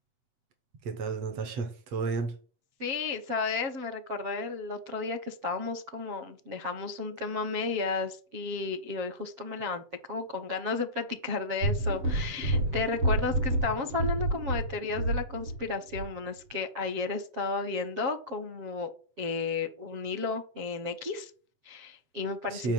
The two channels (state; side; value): late; left; 7.4 ms